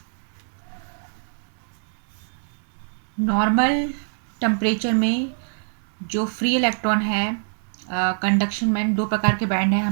नॉर्मल टेम्परेचर में जो फ्री इलेक्ट्रॉन है, कंडक्शन बैंड दो प्रकार के बैंड हैं,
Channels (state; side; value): silent; left; 58 dB below the other